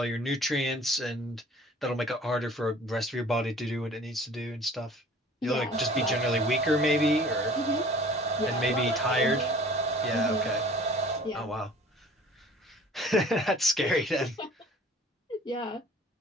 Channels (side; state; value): both; normal; correlation 0.49